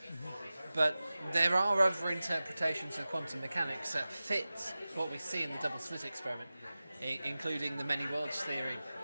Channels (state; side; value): inverted; both; correlation -0.96